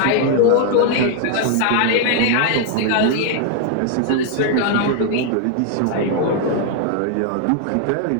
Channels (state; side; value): different; both; correlation 0.00